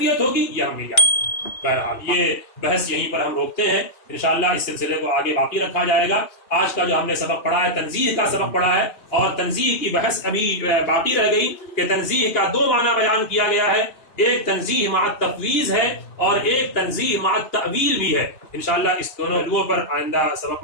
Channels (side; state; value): right; late; 2.8 ms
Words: ہوگی یہ ہم نہیں جانتے۔ بہرحال یہ بحث یہیں پر ہم روکتے ہیں، انشاءاللہ اس سلسلے کو آگے باقی رکھا جائے گا۔ آج کا جو ہم نے سبق پڑھا ہے تنزیہ کا سبق پڑھا ہے، اور تنزیہ کی بحث ابھی باقی رہ گئی کہ تنزیہ کا دو معنی بیان کیا گیا ہے، ایک تنزیہ مع التفویض ہے اور ایک تنزیہ مع التأویل بھی ہے۔ انشاءاللہ اس دونوں پہلوؤں پر آئندہ سبق